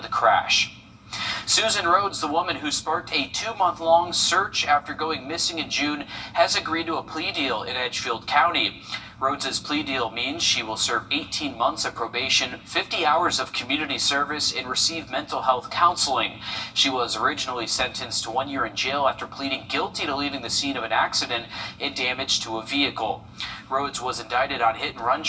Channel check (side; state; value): both; identical; correlation 1.00